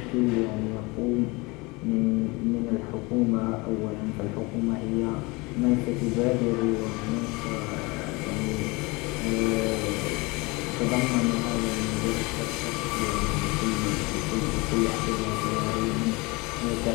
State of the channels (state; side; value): quieter; right; 25.5 dB